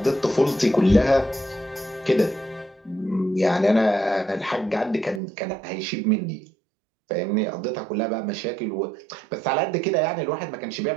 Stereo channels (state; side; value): drops out; left; at 5.2 s